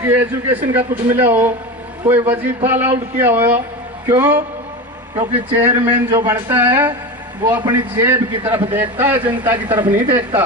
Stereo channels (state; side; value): normal; both; correlation 0.24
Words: एजुकेशन का कुछ मिला हो, कोई वजीफा अलाउड किया हो। क्यों? क्योंकि चेयरमैन जो बनता है वो अपनी जेब की तरफ देखता है, जनता की तरफ नहीं देखता।